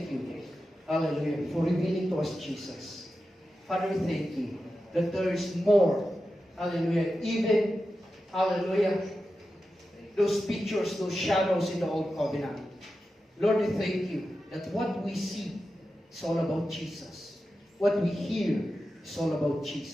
you. Hallelujah. For revealing to us Jesus. Father, we thank you that there is more. Hallelujah. Even, hallelujah, those pictures, those shadows in the Old Covenant. Lord, we thank you that what we see is all about Jesus. What we hear is all about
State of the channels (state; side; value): normal; both; correlation 0.91